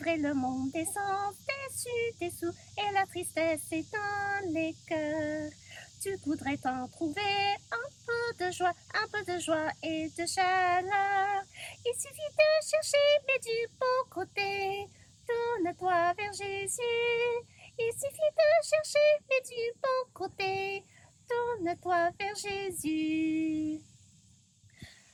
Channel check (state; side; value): identical; both; correlation 1.00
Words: le monde est sans déçu, dessous, et la tristesse est dans les cœurs. Tu voudrais t'en trouver un peu de joie et de chaleur. Il suffit de chercher, mais du bon côté. Tourne-toi vers Jésus. Il suffit de chercher, mais du bon côté. Tourne-toi vers Jésus.